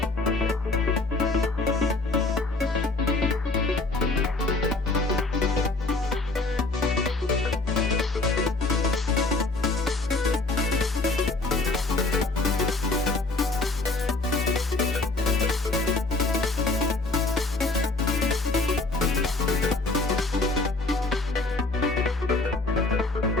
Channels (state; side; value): quieter; right; 3.2 dB